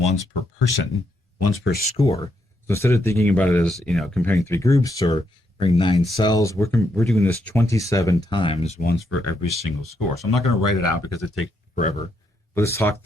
per person, once per score. So instead of thinking about it as, comparing 3 groups or comparing 9 cells, we're doing this 27 times, once for every single score. So I'm not going to write it out because it takes forever. But let's talk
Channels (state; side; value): normal; both; correlation 0.78